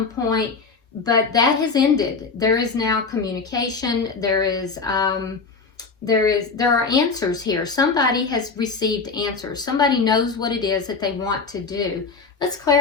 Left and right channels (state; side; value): quieter; right; 4.7 dB